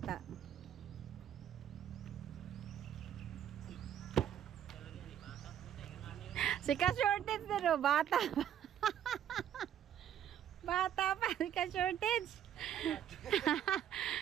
Si ka-shortage din, no? Bata pa. Bata pa, si ka-shortage.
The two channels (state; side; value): quieter; left; 10.1 dB